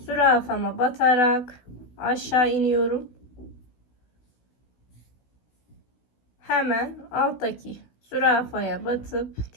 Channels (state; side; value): late; right; 16 ms